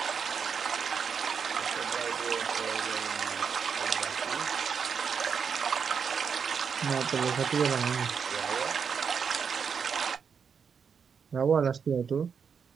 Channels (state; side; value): quieter; left; 6.5 dB